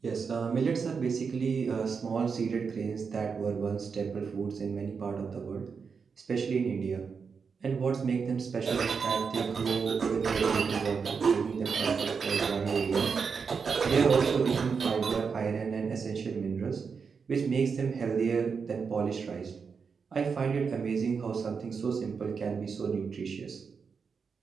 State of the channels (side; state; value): left; quieter; 5.7 dB